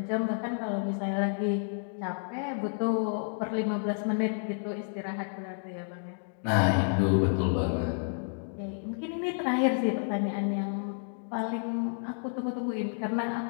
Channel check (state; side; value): silent; right; digital silence